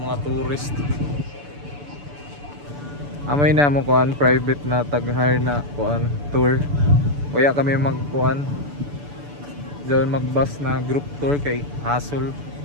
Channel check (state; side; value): late; left; 6.9 ms